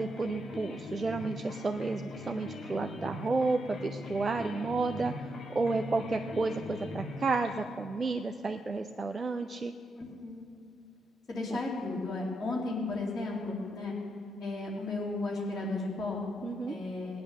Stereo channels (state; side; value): normal; both; correlation 0.82